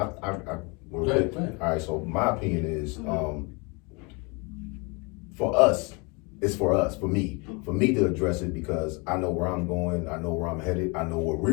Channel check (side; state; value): right; quieter; 29.8 dB